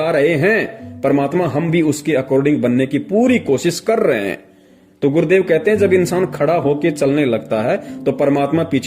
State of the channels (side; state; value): both; identical; correlation 1.00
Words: रहे हैं परमात्मा, हम भी उसके अकॉर्डिंग बनने की पूरी कोशिश कर रहे हैं। तो गुरुदेव कहते हैं जब इंसान खड़ा होके चलने लगता है तो परमात्मा